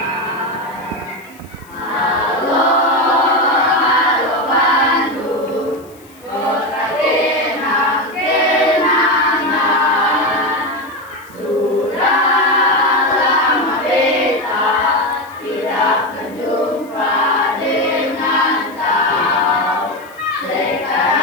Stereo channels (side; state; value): left; noise; hiss, 27 dB below the sound